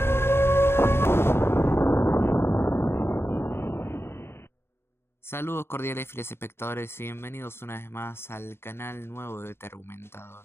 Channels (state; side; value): late; right; 0.12 ms